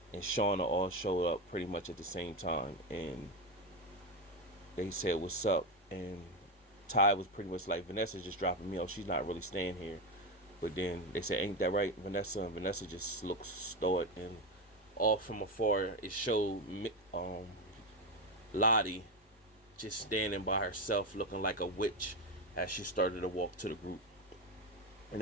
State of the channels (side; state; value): both; normal; correlation 0.13